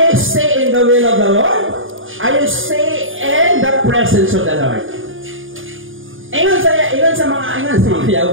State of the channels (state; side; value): late; left; 0.58 ms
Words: stay in the will of the Lord. I stay in the presence of the Lord. Ingon sa mga